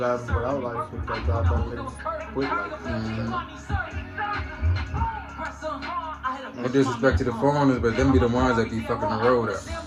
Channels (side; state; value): both; identical; correlation 1.00